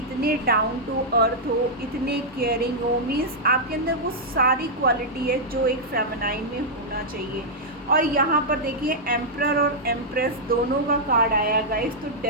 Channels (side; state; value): both; normal; correlation -0.08